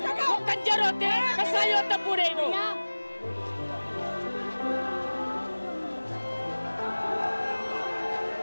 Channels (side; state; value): both; inverted; correlation -1.00